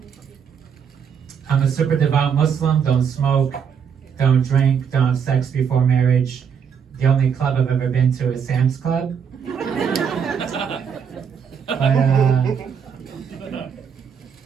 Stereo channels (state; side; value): quieter; left; 7.2 dB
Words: a super devout Muslim. Don't smoke, don't drink, don't have sex before marriage. The only club I've ever been to is Sam's Club. But